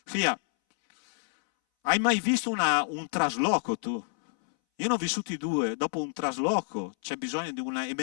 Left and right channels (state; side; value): silent; right; 59 dB below the other